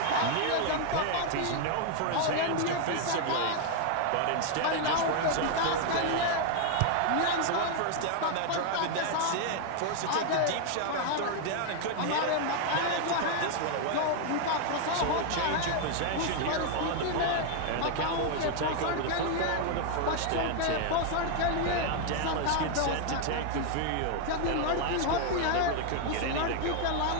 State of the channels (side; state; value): both; different; correlation 0.00